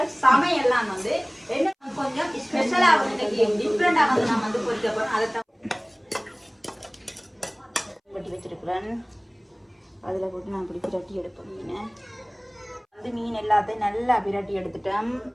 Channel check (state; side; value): identical; both; correlation 1.00